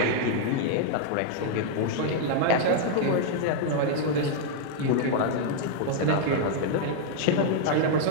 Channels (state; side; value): different; both; correlation 0.00